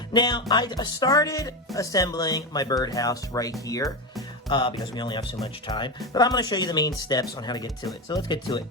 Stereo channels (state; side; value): normal; both; correlation 0.16